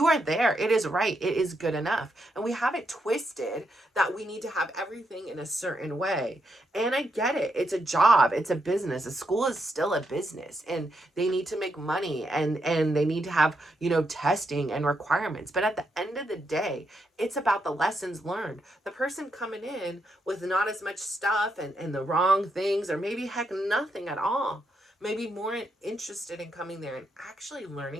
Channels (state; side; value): normal; both; correlation 0.80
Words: are there. It is right. It is good enough. And we have it twisted that we need to have everything in a certain way. And I get it. It's a job. It's a business. A school is still a business, and they need to make money, and they need to have, testing and requirements. But at the end of the day, it's about the lessons learned. The person coming in with not as much stuff and the wrong things, or maybe heck, nothing at all, maybe more interested in coming there and actually